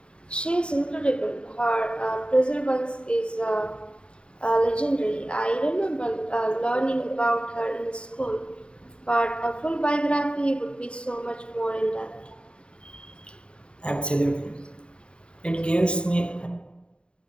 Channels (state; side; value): late; right; 0.053 ms